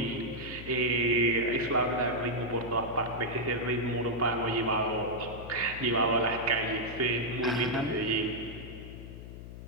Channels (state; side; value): noise; left; hum, 12 dB below the sound